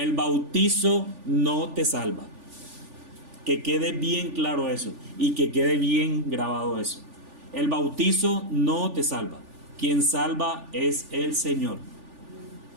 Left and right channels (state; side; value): late; left; 3.4 ms